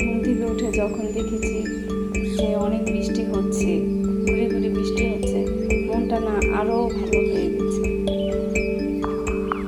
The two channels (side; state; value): both; identical; correlation 1.00